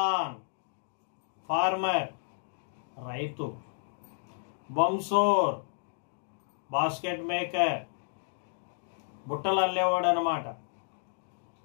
ఫార్మర్, రైతు. బంసోర్, బాస్కెట్ మేకర్, బుట్టలు అల్లేవాడు అన్నమాట.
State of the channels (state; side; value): silent; right; digital silence